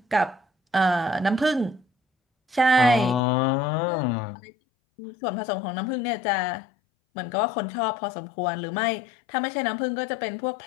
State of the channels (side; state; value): right; drops out; at 3.2 s